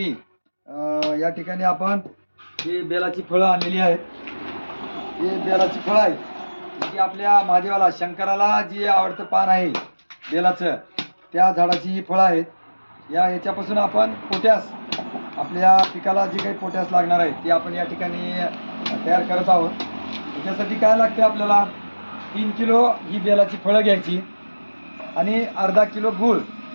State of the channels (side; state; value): both; inverted; correlation -1.00